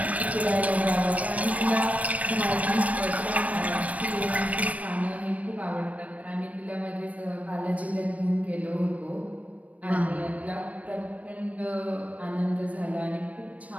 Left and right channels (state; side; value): late; left; 0.067 ms